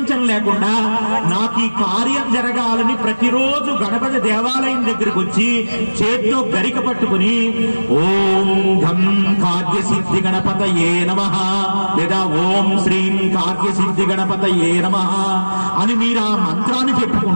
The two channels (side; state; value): both; inverted; correlation -1.00